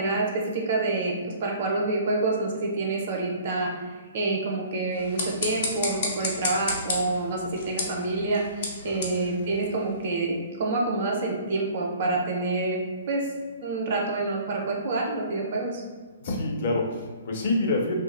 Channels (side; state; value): both; inverted; correlation -0.50